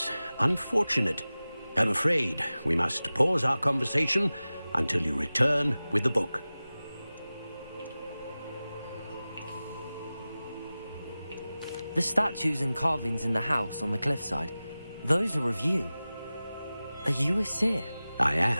unfortunate. I'm afraid we must pause our conversation until you return with the book. The statues and carvings in the house on the cliffside, those are of you. Are you a seer? I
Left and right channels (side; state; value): both; inverted; correlation -0.96